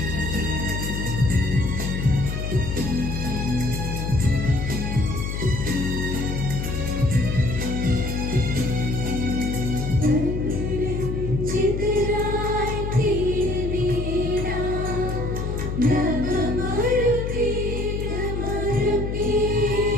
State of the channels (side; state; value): left; noise; hum, 3 dB below the sound